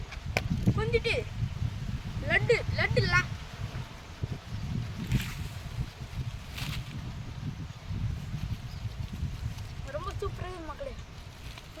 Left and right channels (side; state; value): both; identical; correlation 1.00